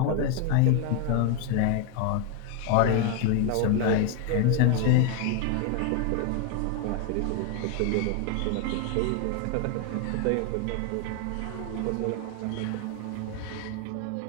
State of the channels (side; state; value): both; different; correlation 0.01